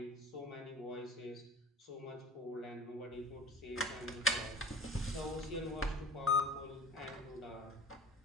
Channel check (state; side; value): normal; both; correlation 0.39